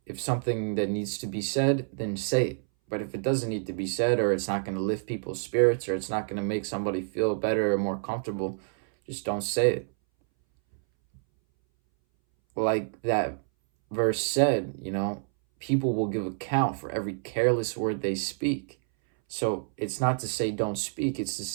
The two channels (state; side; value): silent; left; 59 dB below the other